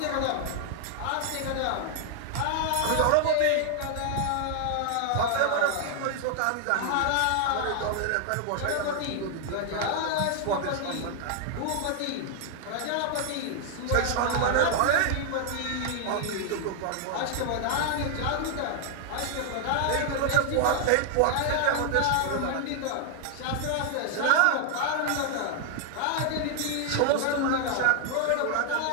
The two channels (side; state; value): both; different; correlation 0.00